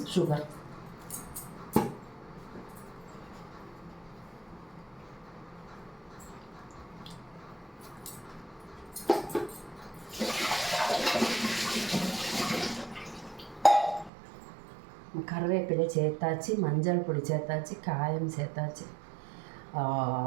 சுகர். கருவேப்பிலை சேர்த்தாச்சு, மஞ்சள் பொடி சேர்த்தாச்சு, காயம் சேர்த்தாச்சு,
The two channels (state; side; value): drops out; left; at 14.1 s